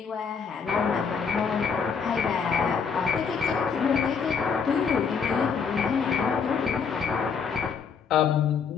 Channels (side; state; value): right; quieter; 6.1 dB